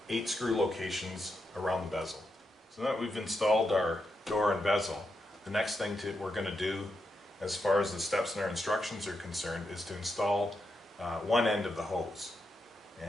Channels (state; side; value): normal; both; correlation 0.85